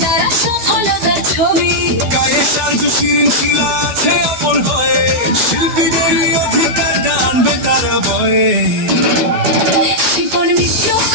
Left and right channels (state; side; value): late; left; 12 ms